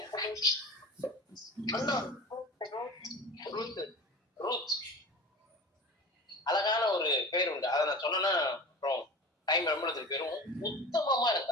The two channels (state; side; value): normal; both; correlation 0.35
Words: ரூத் அழகான ஒரு பேர் உண்டு. அதை நான் சொன்னா அப்புறம் டைம் ரொம்ப பேரும். உத்தமமா